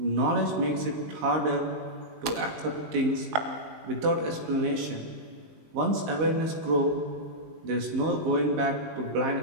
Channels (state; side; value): late; left; 19 ms